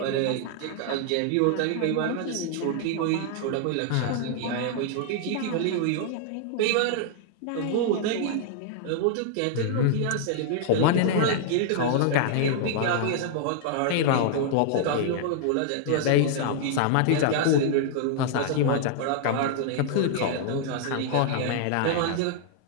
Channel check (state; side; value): different; both; correlation -0.01